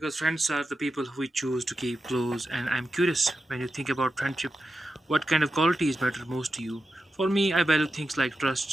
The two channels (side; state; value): both; normal; correlation 0.90